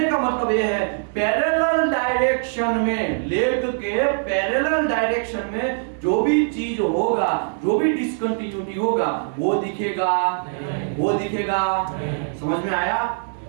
का मतलब ये है पैरेलल डायरेक्शन में, लेग के पैरेलल डायरेक्शन में जो भी चीज होगा, जो भी डिसकंटिन्यूटी होगा वो दिखेगा, वो दिखेगा। समझ में आया?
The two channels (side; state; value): left; silent; digital silence